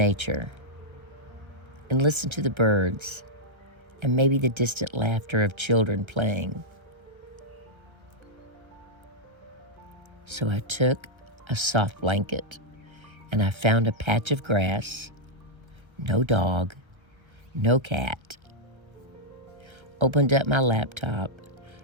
and listen to the birds and maybe the distant laughter of children playing? So I took a soft blanket and I found a patch of grass, no dog, no cat. Opened up my laptop,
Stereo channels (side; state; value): left; late; 1.3 ms